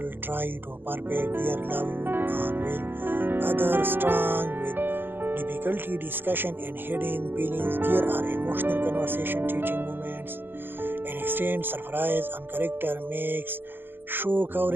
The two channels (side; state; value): left; late; 0.099 ms